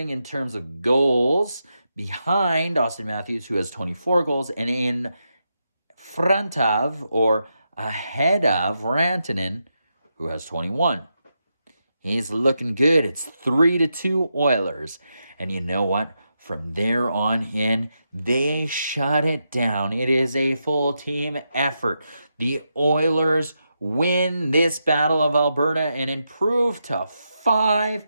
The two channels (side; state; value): both; inverted; correlation -0.85